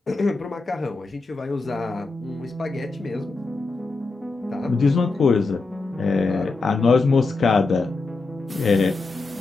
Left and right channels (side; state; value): right; quieter; 3.7 dB